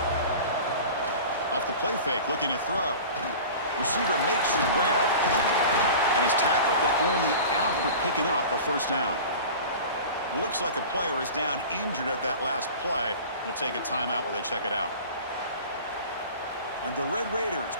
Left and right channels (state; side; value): inverted; both; correlation -0.37